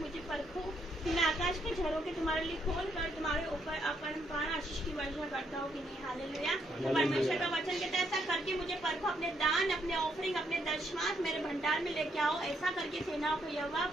परखो कि मैं आकाश के झरोखे तुम्हारे लिए खोल कर तुम्हारे ऊपर अपरंपार आशीष की वर्षा करता हूँ कि नहीं। हालेलुया। परमेश्वर का वचन कहता है ऐसा करके मुझे परखो, अपने दान, अपने ऑफरिंग, अपने दशमांश मेरे भंडार में लेके आओ। ऐसा करके सेनाओं को यहोवा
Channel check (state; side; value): normal; both; correlation 0.74